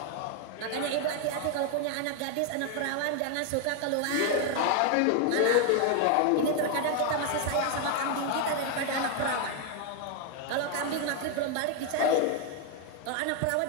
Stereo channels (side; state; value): both; different; correlation 0.01